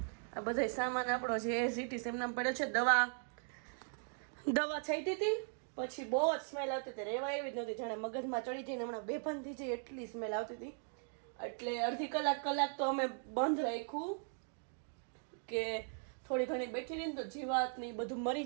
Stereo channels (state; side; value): silent; left; 52 dB below the other